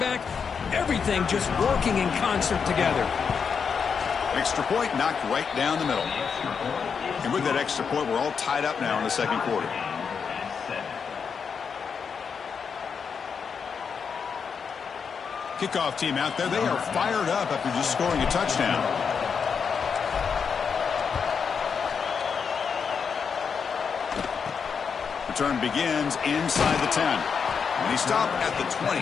everything just working in concert together. Extra point knocked right down the middle. And with that extra point, we're all tied up now in the second quarter. Kickoff team out there. They are fired up after just scoring a touchdown. Return begins inside the 10. And he stopped at the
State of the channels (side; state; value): right; quieter; 6.2 dB